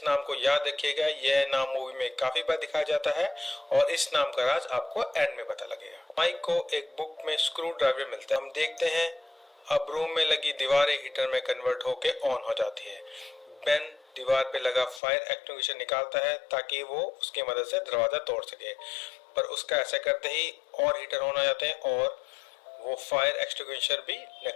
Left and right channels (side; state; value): right; drops out; at 15.0 s